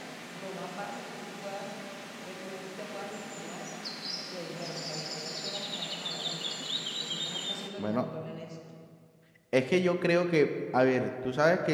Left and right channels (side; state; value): both; identical; correlation 1.00